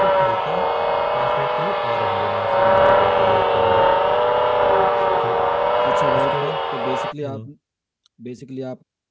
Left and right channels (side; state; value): both; identical; correlation 1.00